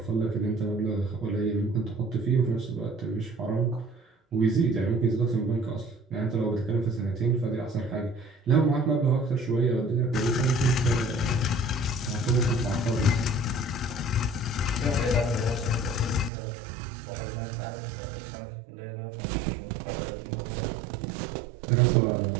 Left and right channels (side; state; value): left; drops out; at 16.3 s